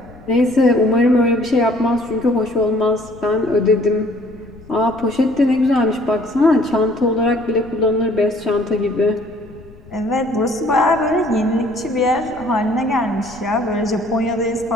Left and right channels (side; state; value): left; noise; rumble, 21 dB below the sound